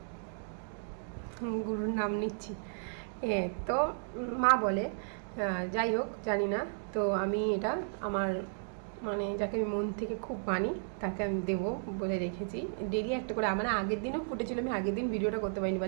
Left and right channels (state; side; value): silent; left; digital silence